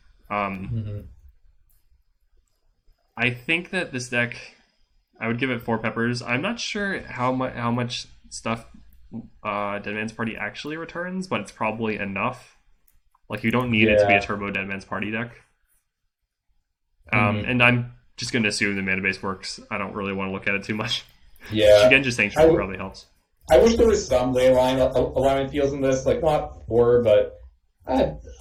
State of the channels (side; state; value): both; identical; correlation 1.00